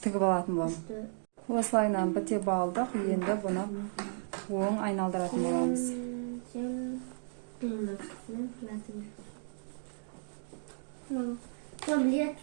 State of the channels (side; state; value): left; silent; digital silence